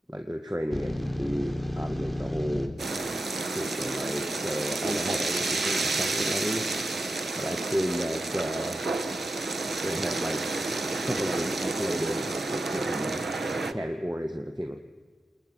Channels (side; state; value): both; normal; correlation 0.90